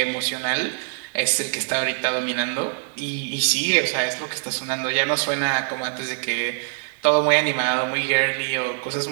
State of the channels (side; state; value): left; silent; digital silence